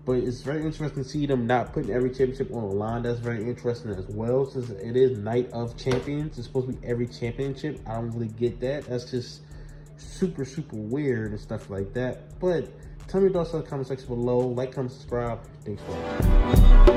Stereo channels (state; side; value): identical; both; correlation 1.00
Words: But it's very interesting to see them not putting every championship on the line. That's very interesting as well, since it is Night of Champions. It's supposed to be every championship. I don't really get that. That's just super, super weird and stuff like that. But tell me your thoughts in the comment section below. Like, comment, subscribe. Thanks for